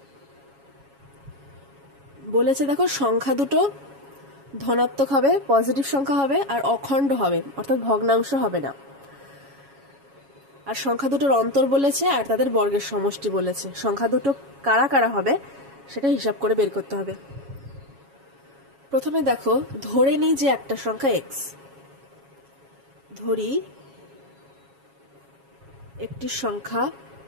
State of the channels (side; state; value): left; late; 7.2 ms